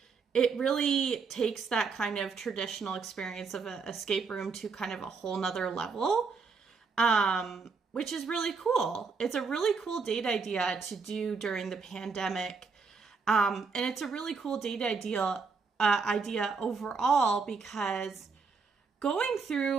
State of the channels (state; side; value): quieter; left; 5.0 dB